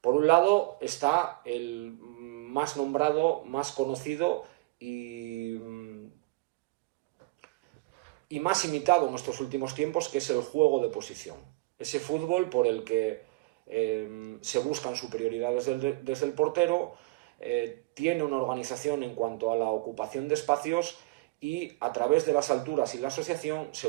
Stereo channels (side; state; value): left; quieter; 23.0 dB